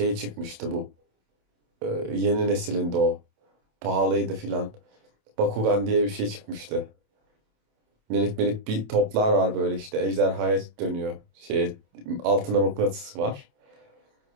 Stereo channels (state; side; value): late; left; 27 ms